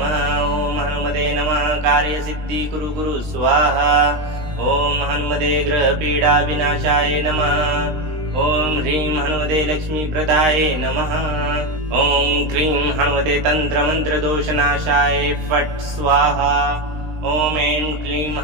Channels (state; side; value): late; left; 20 ms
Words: ओम हनुमते नमः। कार्य सिद्धि कुरु कुरु स्वाहा। ओम हनुमते ग्रह पीडा विनाशाय नमः। ओम ह्रीं हनुमते लक्ष्मी प्रदाय नमः। ओम क्रीं हनुमते तंत्र मंत्र दोष नाशाय फट स्वाहा। ओम ऐं क्लीं